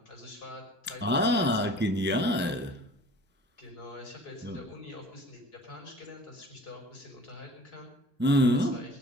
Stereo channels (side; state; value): both; normal; correlation 0.46